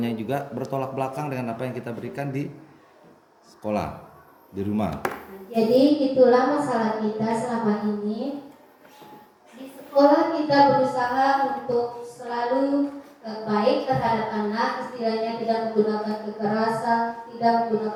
juga bertolak belakang dengan apa yang kita berikan di sekolah, di rumah. Jadi itulah masalah kita selama ini. Di sekolah kita berusaha untuk selalu baik terhadap anak, istilahnya tidak menggunakan kekerasan, tidak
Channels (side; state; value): both; identical; correlation 1.00